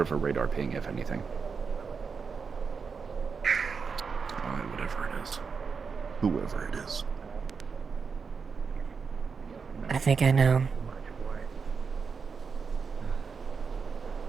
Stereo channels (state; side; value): quieter; left; 5.5 dB